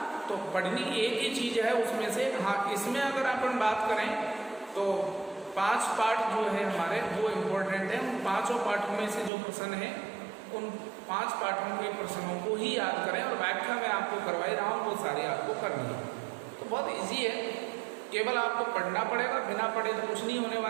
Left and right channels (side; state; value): left; drops out; at 9.3 s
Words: तो पढ़नी एक ही चीज है उसमें से। हाँ, इसमें अगर अपन बात करें तो 5 पार्ट जो है हमारे वो इम्पोर्टेंट है। उन 5 पार्टों में से जो प्रश्न है उन 5 पार्टों के प्रश्नों को ही याद करें और व्याख्या मैं आपको करवाई रहा हूँ वो सारी आपको करनी है। तो बहुत इजी है, केवल आपको पढ़ना पड़ेगा, बिना पढ़े तो कुछ नहीं होने